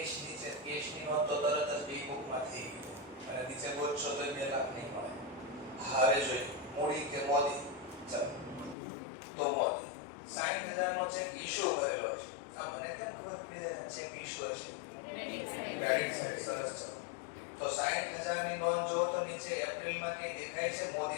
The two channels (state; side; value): drops out; right; at 8.8 s